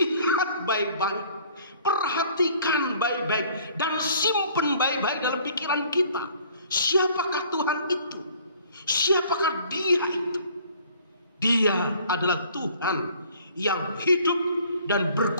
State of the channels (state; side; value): inverted; both; correlation -0.55